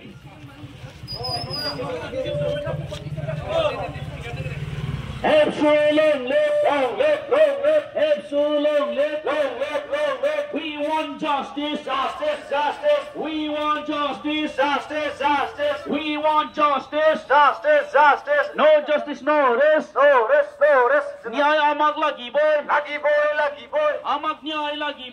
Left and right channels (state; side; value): identical; both; correlation 1.00